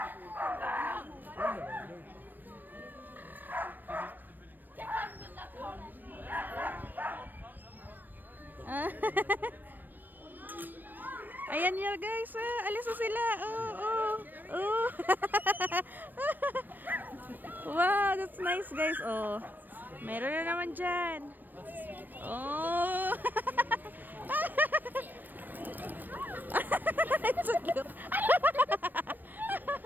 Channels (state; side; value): late; left; 0.090 ms